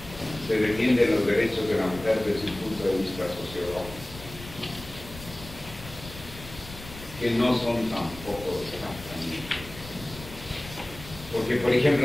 se defienden los derechos de la mujer desde un punto de vista sociológico, que no son tampoco exactamente. Porque, por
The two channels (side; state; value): left; noise; rumble, 15 dB below the sound